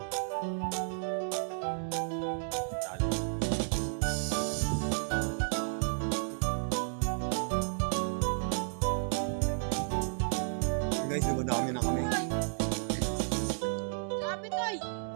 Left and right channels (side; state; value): left; silent; digital silence